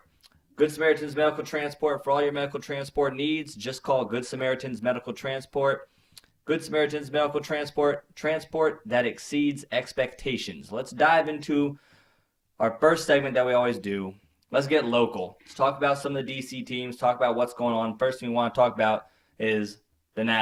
Good Samaritans Medical Transport, for all your medical transport needs, just call Good Samaritans Medical Transport. Good Samaritans Medical Transport that exceeds expectations. Let's dive into our first segment that we always do. Let's get local. Let's talk about some of the DC teams, talk about what's going on. First thing we want to talk about is the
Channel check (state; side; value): identical; both; correlation 1.00